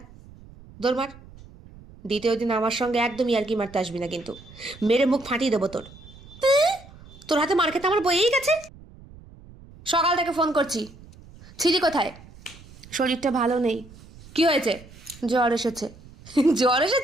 দৌড় মার। দ্বিতীয় দিন আমার সঙ্গে একদমই আর কি মারতে আসবি না কিন্তু, মেরে মুখ ফাটিয়ে দেবো তোর। তোর হাতে মার খেতে আমার বয়েই গেছে। সকাল থেকে ফোন করছি, ছিলি কোথায়? শরীরটা ভালো নেই। কি হয়েছে? জ্বর এসেছে। জ্বর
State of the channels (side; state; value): right; noise; rumble, 21 dB below the sound